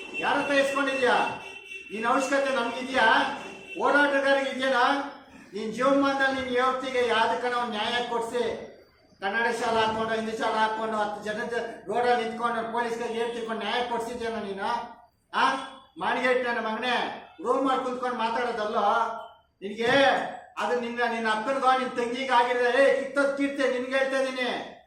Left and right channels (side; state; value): both; identical; correlation 1.00